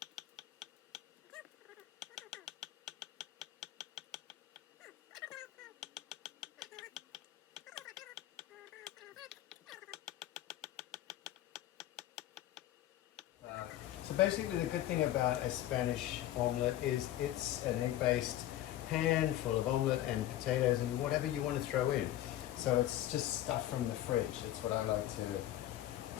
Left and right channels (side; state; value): right; quieter; 13.6 dB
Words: so basically the good thing about a Spanish omelette is it's an egg-based pan full of omelette and potatoes and whatever you want to throw in. So it's just stuff from the fridge. That's what I like to